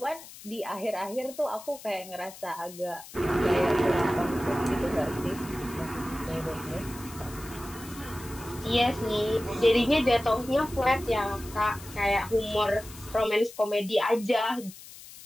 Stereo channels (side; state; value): left; noise; hiss, 17 dB below the sound